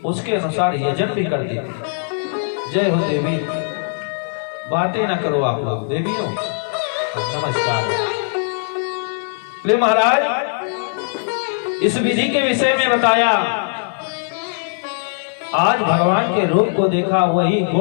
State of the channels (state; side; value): silent; right; 66 dB below the other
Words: उसके अनुसार यजन भी करती थी। जय हो देवी। बातें ना करो आप लोग, देवियों नमस्कार। ले महाराज, इस विधि के विषय में बताया। आज भगवान के रूप को देखा, वही